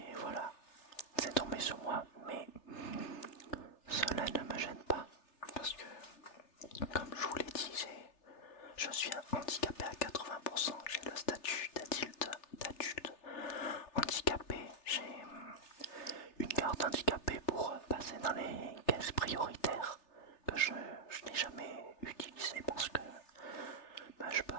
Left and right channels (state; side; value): late; right; 3.3 ms